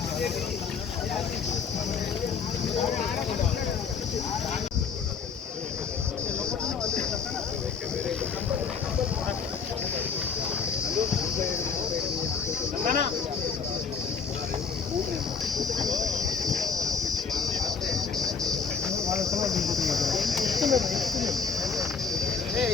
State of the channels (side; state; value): right; quieter; 5.7 dB